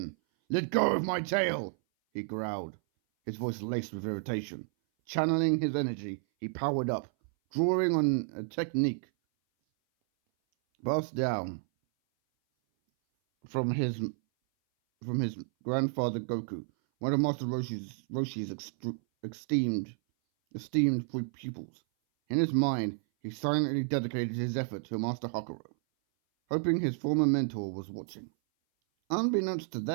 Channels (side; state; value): left; silent; 57 dB below the other